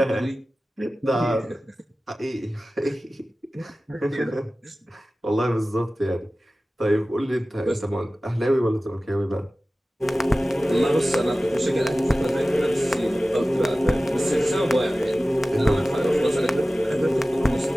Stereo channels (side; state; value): both; normal; correlation 0.96